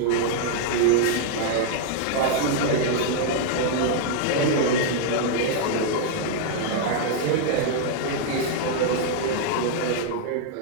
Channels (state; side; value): different; both; correlation -0.01